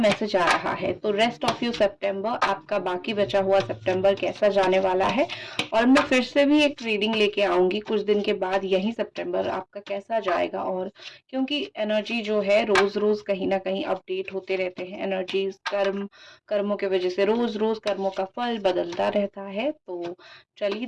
आ रहा है। तो रेस्ट ऑफ यू सितंबर, आपका बाकी बचा हुआ सितंबर कैसा जाने वाला है। और मैं फिर से भी एक रीडिंग लेके आऊंगी कुछ दिन के बाद, यही सितंबर आपका कैसा जाएगा। और क्योंकि एनर्जी जो है रोज रोज कहीं ना कहीं अपडेट होते रहते हैं, एनर्जीज कर्मों की वजह से रोज रोज कर्मों का फल बदलता रहता है। तो चलिए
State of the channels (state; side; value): identical; both; correlation 1.00